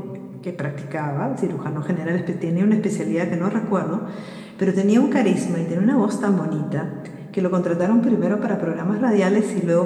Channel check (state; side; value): identical; both; correlation 1.00